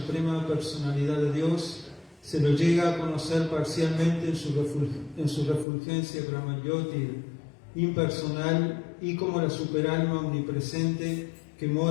personalidad de Dios, se lo llega a conocer parcialmente en su refulgencia Brahmayoti, impersonal, y como la superalma omnipresente que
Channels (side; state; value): right; drops out; at 5.7 s